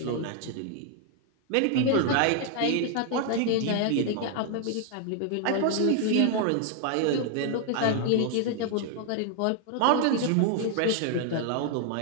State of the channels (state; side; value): different; both; correlation 0.00